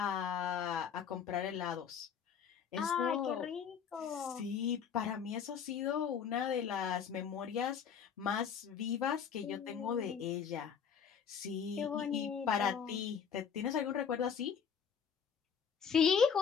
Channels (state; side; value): quieter; right; 7.3 dB